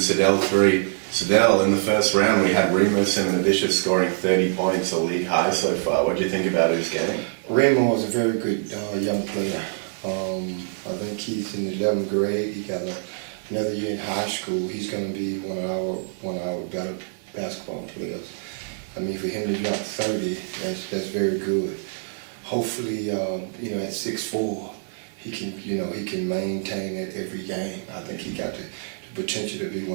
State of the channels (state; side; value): silent; left; digital silence